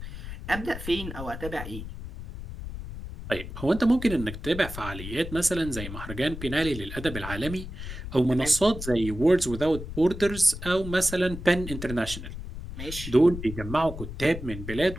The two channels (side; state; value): left; noise; rumble, 9 dB below the sound